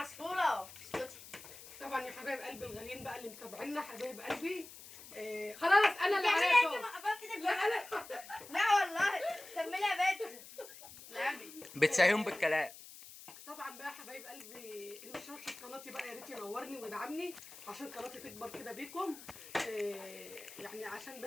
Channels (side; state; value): left; noise; hiss, 16 dB below the sound